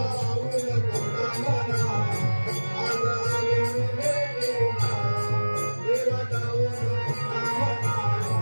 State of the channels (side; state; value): both; inverted; correlation -1.00